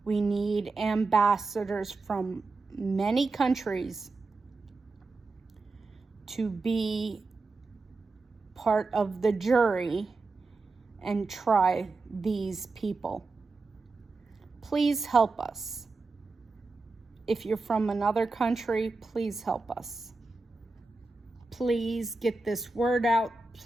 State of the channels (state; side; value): quieter; left; 3.7 dB